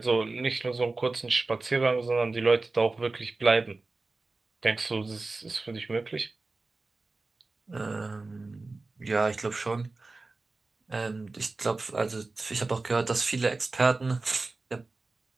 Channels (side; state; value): left; quieter; 3.5 dB